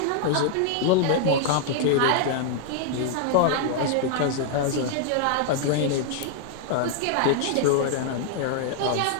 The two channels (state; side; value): different; both; correlation -0.01